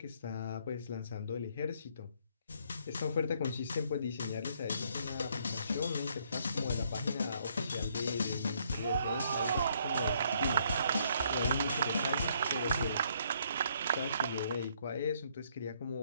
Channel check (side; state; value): both; inverted; correlation -0.68